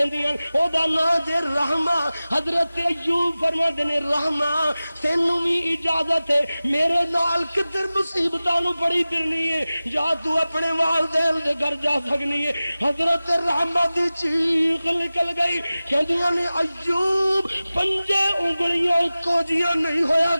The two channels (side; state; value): both; inverted; correlation -0.97